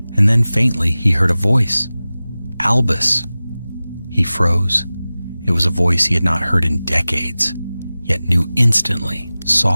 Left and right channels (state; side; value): inverted; both; correlation -0.97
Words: and then faintly he heard a voice. Albus. He froze. It was a voice he had not heard in decades, yet knew instantly,